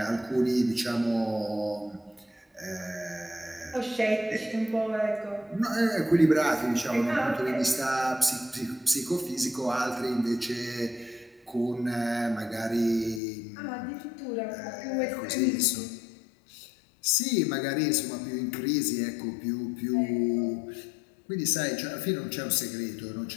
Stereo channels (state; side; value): drops out; right; at 13.2 s